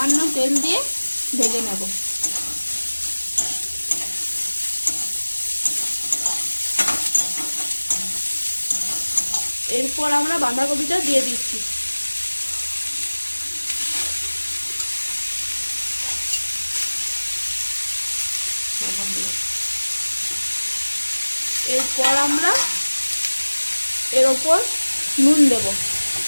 তেল দিয়ে ভেজে নেব। এরপর আমরা বাঁধাকপিটা দিয়ে দিচ্ছি। এরপর আমরা এর ওপর নুন দেব।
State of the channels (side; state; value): both; inverted; correlation -1.00